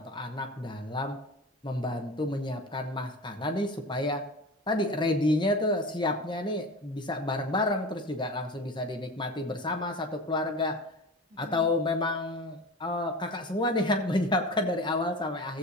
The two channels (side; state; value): both; normal; correlation 0.32